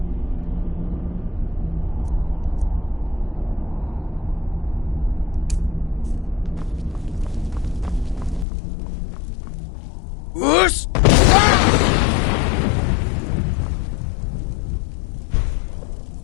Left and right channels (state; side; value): drops out; right; at 8.5 s